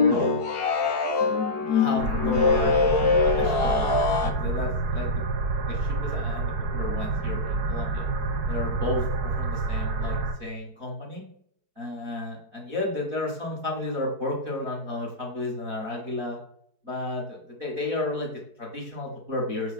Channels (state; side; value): late; left; 4.7 ms